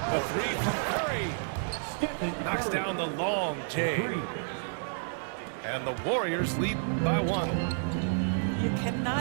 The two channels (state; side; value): silent; left; digital silence